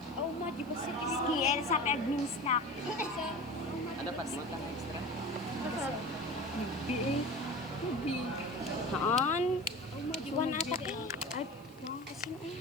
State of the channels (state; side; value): noise; right; hiss, 26 dB below the sound